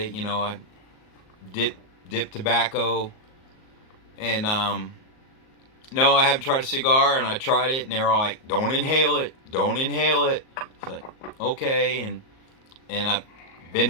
I dip dip tobacco, and no, I haven't tried a cigar, and I tried it, and they're all like, "Don't inhale it, don't inhale it." It's like, okay, and I've been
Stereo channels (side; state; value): right; late; 38 ms